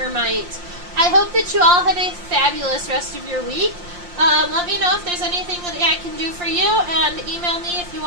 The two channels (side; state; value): left; late; 5.7 ms